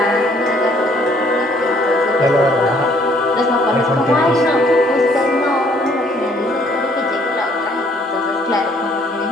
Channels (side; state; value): both; normal; correlation 0.62